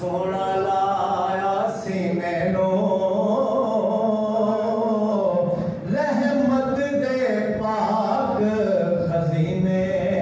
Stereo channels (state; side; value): identical; both; correlation 1.00